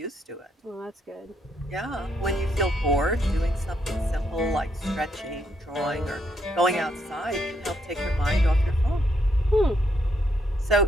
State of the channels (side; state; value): both; normal; correlation 0.75